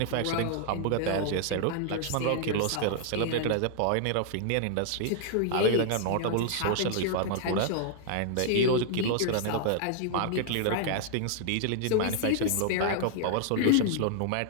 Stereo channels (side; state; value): both; different; correlation 0.00